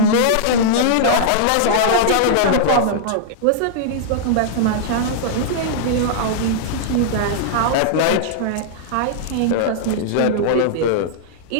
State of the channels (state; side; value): different; both; correlation -0.01